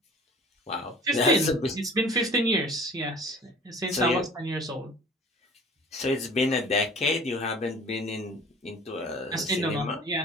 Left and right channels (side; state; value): both; normal; correlation 0.46